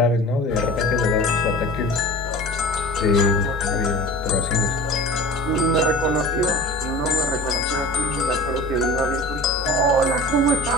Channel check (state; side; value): normal; both; correlation 0.38